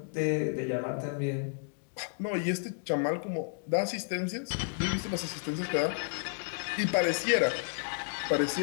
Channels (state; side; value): silent; right; 57 dB below the other